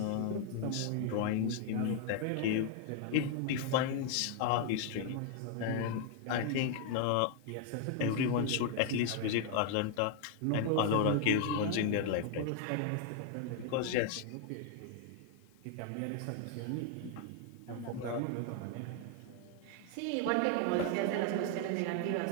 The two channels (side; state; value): both; different; correlation 0.00